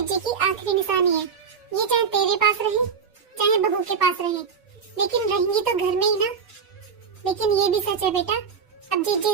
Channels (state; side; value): quieter; left; 6.2 dB